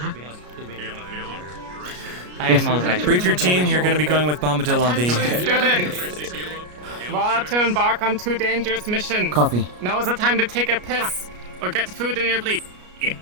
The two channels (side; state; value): left; late; 33 ms